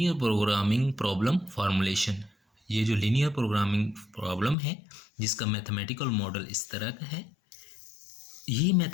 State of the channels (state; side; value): drops out; right; at 4.5 s